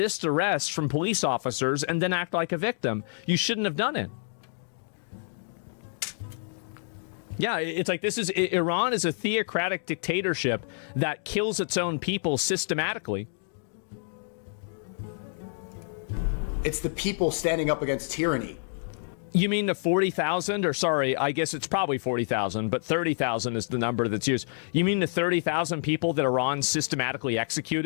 arrest from police officers and then act like a victim. You shouldn't have done it. Yeah, it's like Iran is a theocratic dictatorship that kills its own people systematically. It's the people standing up against tyranny. You mean the 40,000, or sorry, I guess it's probably 40,000, but 30,000 is the number that's used. You mean the 30,000 people that Iran systematically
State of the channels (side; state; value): right; silent; digital silence